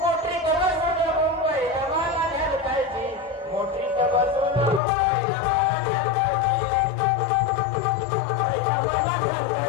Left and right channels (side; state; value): right; drops out; at 4.8 s